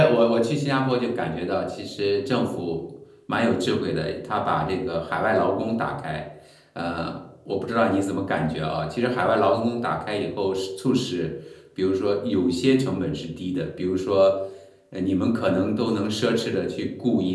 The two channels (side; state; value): both; identical; correlation 1.00